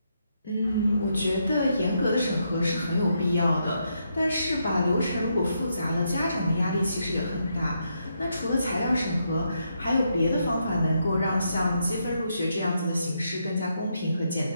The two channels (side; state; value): both; inverted; correlation -0.80